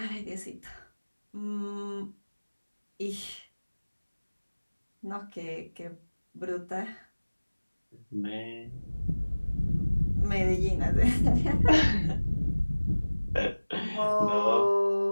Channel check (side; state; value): both; inverted; correlation -1.00